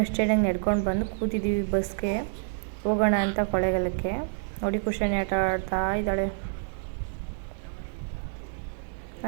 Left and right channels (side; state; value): left; silent; digital silence